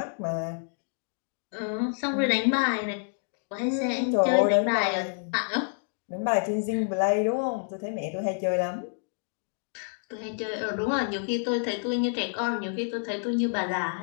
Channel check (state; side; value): silent; right; 59 dB below the other